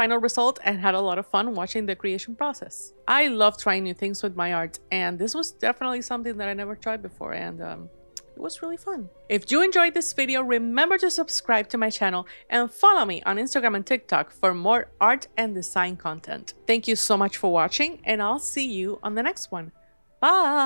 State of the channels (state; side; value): inverted; both; correlation -1.00